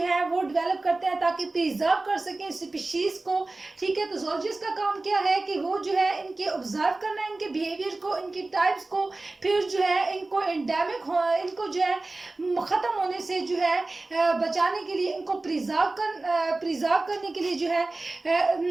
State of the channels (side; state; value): left; quieter; 3.2 dB